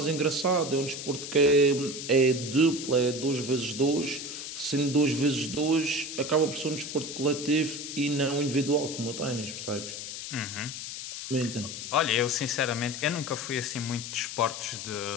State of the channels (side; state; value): left; noise; hiss, 8 dB below the sound